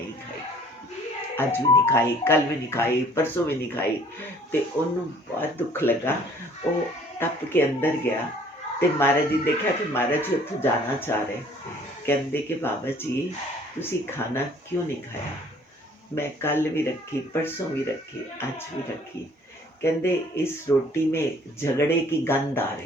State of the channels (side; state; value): both; normal; correlation 0.56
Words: ਖਾਈ, ਅੱਜ ਵੀ ਨਹੀਂ ਖਾਈ, ਕੱਲ ਵੀ ਨਹੀਂ ਖਾਈ, ਪਰਸੋਂ ਵੀ ਨਹੀਂ ਖਾਈ। ਤੇ ਉਹਨੂੰ ਬਹੁਤ ਦੁੱਖ ਲੱਗਾ। ਉਹ ਟੱਪ ਕੇ ਅੰਦਰ ਗਿਆ ਤੇ ਮਹਾਰਾਜ ਜੀ ਦੇਖਿਆ ਕਿ ਮਹਾਰਾਜ ਜੀ ਉੱਥੋਂ ਜਾਣਾ ਚਾਹ ਰਹੇ। ਕਹਿੰਦੇ ਕਿ ਬਾਬਾ ਜੀ ਤੁਸੀਂ ਖਾਣਾ ਕਿਉਂ ਨਹੀਂ ਖਾਇਆ? मैं कल भी रखी, परसों भी रखी, आज भी रखी। कहते इस रोटी में झगड़े की गंध आ